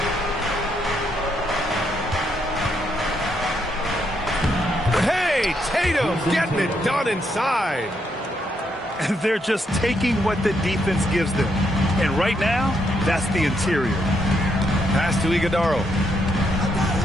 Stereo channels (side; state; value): both; normal; correlation 0.77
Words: Hey, Tatum getting it done inside. They're just taking what the defense gives them. And right now, that's the interior. Pass to Iguodala.